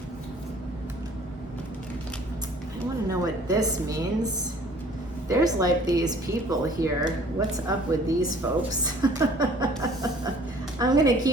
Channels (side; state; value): both; normal; correlation 0.53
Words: I wanna know what this means. There's like these people here. What's up with these folks? I'm gonna